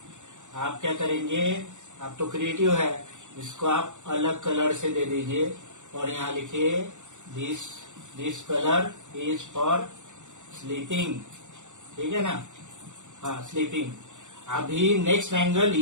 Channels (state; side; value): late; left; 0.85 ms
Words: आप क्या करेंगे, आप तो क्रिएटिव है, इसको आप अलग कलर से दे दीजिए और यहाँ लिखिए this colour is for sleeping, ठीक है ना। हाँ स्लीपिंग। अभी नेक्स्ट एंगल